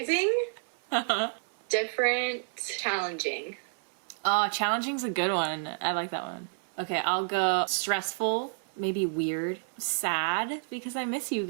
Different. Challenging. Oh, challenging's a good one. I like that one. Okay, I'll go stressful, maybe weird, sad, because I miss you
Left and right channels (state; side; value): silent; left; 58 dB below the other